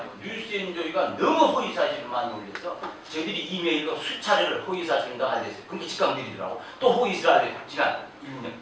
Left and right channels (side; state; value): both; identical; correlation 1.00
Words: 뉴스엔조이가 너무 허위 사실을 많이 올려서 저희들이 이메일로 수차례를 허위 사실인가 알렸어요. 그러니까 직감 내리더라고. 또 허위 사실 지난 1년